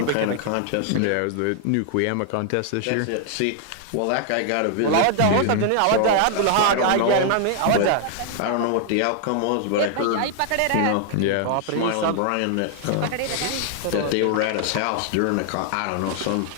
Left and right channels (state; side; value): different; both; correlation 0.00